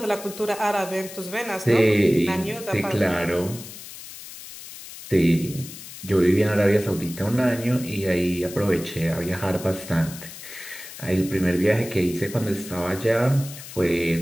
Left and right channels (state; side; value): noise; left; hiss, 14 dB below the sound